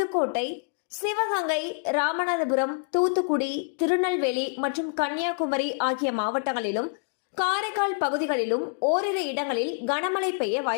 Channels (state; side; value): silent; right; digital silence